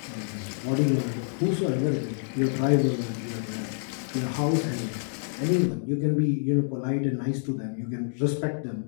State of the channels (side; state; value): right; silent; digital silence